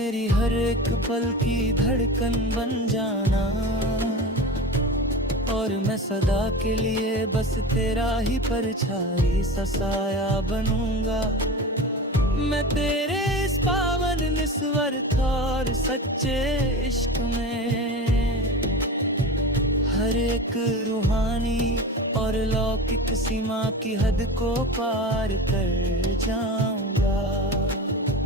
हर एक पल की धड़कन बन जाना, और मैं सदा के लिए बस तेरा ही परछाई सा साया बनूंगा। मैं तेरे इस पावन निस्वार्थ और सच्चे इश्क में हर एक रूहानी और लौकिक सीमा की हद को पार कर जाऊंगा।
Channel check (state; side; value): normal; both; correlation 0.30